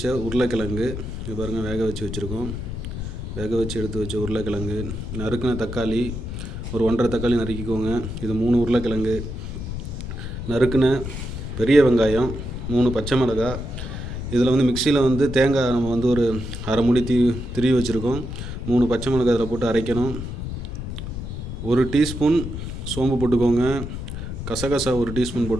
உருளைக்கிழங்கு, இது பாருங்கள் வேக வச்சு வச்சுருக்கோம். வேக வச்சு எடுத்து வச்ச உருளைக்கிழங்கு, நறுக்கின தக்காளி ஒரு 1.5 தக்காளி நறுக்கிக்கோங்க. இது 3 உருளைக்கிழங்கு, நறுக்கின பெரிய வெங்காயம், 3 பச்சை மிளகாய். இதில் வந்து மிக்சியில் வந்து தேங்காய் நம்ம வந்து ஒரு அரை மூடி திருவி வச்சுருக்கோம். 3 பச்சை மிளகாய் இதில் போட்டு அரைக்கணும். 1 டீஸ்பூன் சோம்பு போட்டுக்கோங்க. கசகசா 1 டீஸ்பூன்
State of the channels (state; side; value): noise; left; rumble, 6 dB below the sound